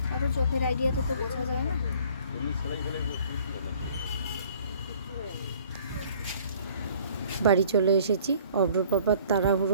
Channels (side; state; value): both; inverted; correlation -0.55